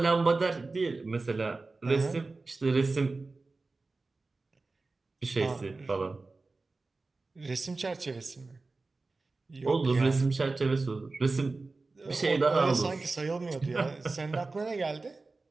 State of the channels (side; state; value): left; quieter; 3.6 dB